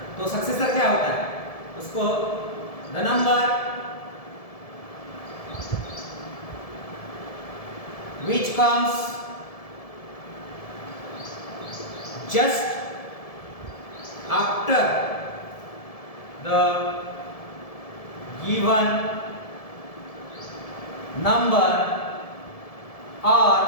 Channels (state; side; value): late; right; 1.7 ms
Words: तो सक्सेसर क्या होता है, उसको the number which comes just after the given number or